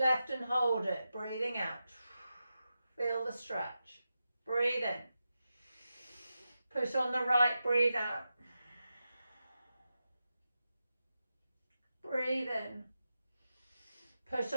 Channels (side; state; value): both; inverted; correlation -0.90